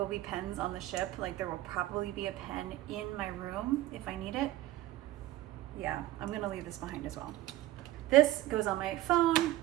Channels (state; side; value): quieter; left; 15.2 dB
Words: be pens on the ship. Like, there will probably be a pen in my room if I need it. Yeah, I'm gonna leave this behind as well. This goes on my phone.